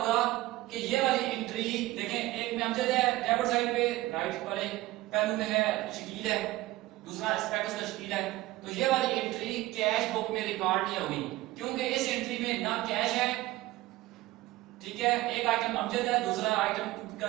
कि ये वाली एंट्री देखें, एक में अमजद है डेबिट साइड पे, राइट वाले पहलू में है शकील है, दूसरा एस्पेक्ट उसका शकील है। तो ये वाली एंट्री कैश बुक में रिकॉर्ड नहीं होगी, क्योंकि इस एंट्री में ना कैश है, ठीक है, एक आइटम अमजद है, दूसरा आइटम का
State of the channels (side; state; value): left; quieter; 17.7 dB